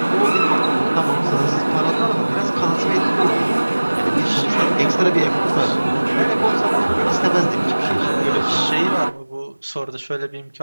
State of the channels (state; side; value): inverted; both; correlation -1.00